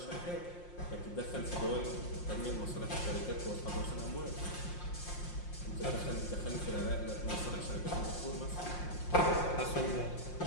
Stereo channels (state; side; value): late; right; 5.6 ms